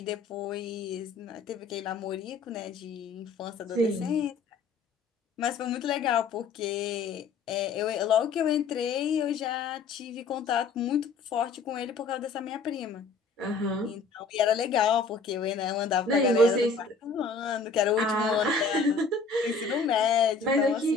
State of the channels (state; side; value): quieter; right; 4.6 dB